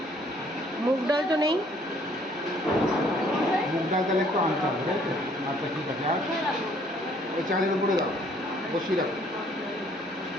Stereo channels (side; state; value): both; normal; correlation 0.61